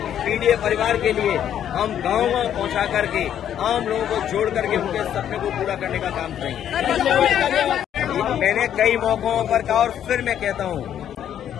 पीड़ित परिवार के लिए, हम गाँव पहुंचा करके आम लोगों को जोड़ करके उनके सपने को पूरा करने का काम करेंगे। मैंने कई मौकों पर कहा और फिर मैं कहता हूं,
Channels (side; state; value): right; quieter; 10.0 dB